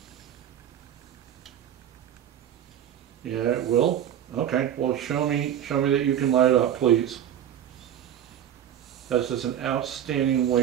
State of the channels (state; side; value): quieter; left; 10.3 dB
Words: Yeah, it will. Okay, well, show me that you can light it up, please. That's just an outstanding